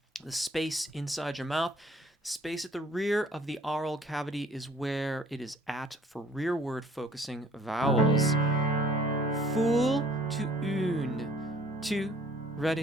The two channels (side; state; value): both; normal; correlation 0.56